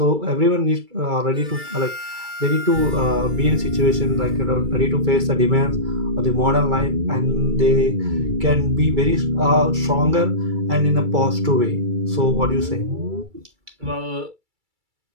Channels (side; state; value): left; late; 2.3 ms